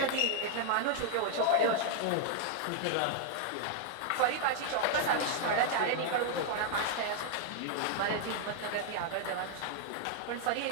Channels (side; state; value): both; different; correlation 0.00